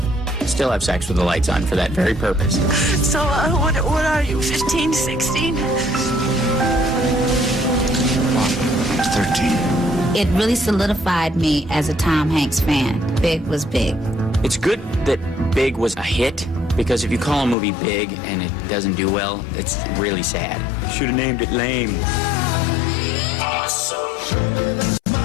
Still have sex with the lights on for that very purpose. So, what are you, 15, 16? 13. It really solidified me as a Tom Hanks fan. Big was big. It's good that Big was a hit, because if you call a movie Big and it doesn't do well, it's really sad. Should have named it Lame.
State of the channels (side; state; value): right; drops out; at 17.6 s